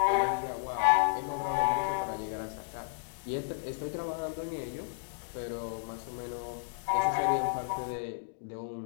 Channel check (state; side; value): silent; right; digital silence